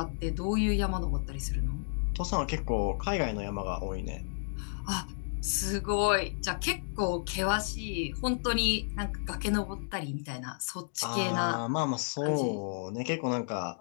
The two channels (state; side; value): silent; right; digital silence